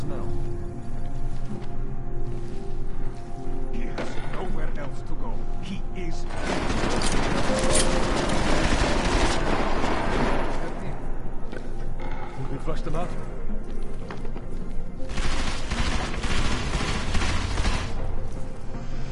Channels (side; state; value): both; identical; correlation 1.00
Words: He has nowhere else to go. He is We flushed them out.